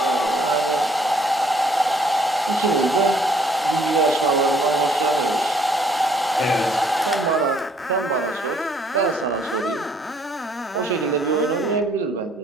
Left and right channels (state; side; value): normal; both; correlation 0.64